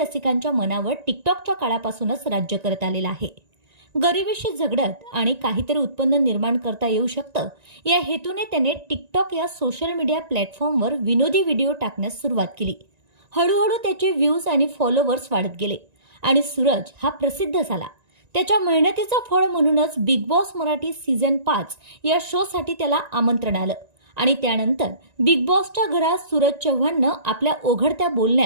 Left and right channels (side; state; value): left; late; 1.9 ms